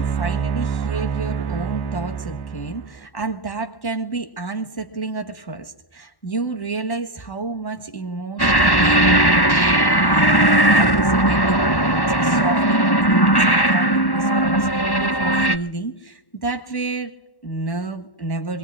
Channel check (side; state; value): right; late; 1.1 ms